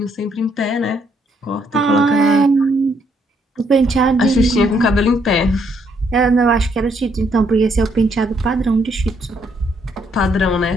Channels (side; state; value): both; normal; correlation 0.72